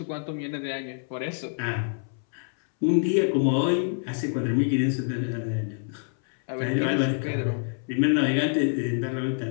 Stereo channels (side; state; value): right; silent; 61 dB below the other